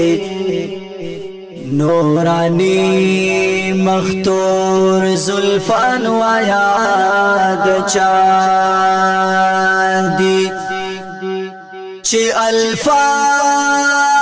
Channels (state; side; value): identical; both; correlation 1.00